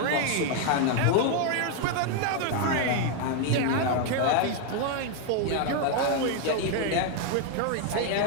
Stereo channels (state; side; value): different; both; correlation 0.01